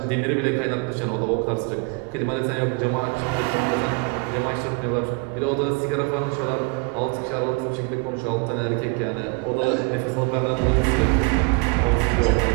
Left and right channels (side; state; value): left; quieter; 32.1 dB